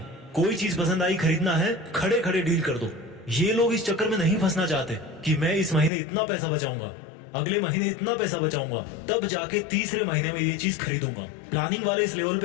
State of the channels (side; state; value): right; drops out; at 5.9 s